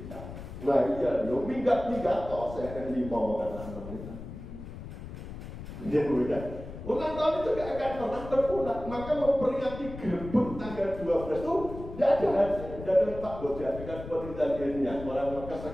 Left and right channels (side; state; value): left; noise; rumble, 11 dB below the sound